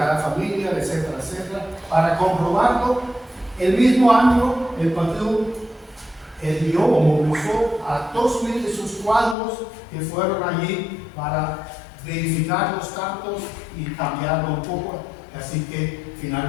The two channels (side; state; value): right; drops out; at 9.3 s